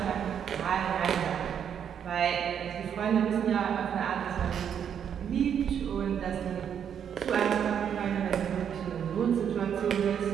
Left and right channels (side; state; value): left; quieter; 8.4 dB